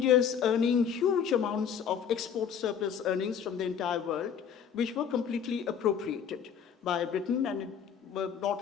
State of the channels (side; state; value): right; quieter; 7.7 dB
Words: earning huge amounts of export surplus earnings from the entire world, which were completely appropriated by Britain and were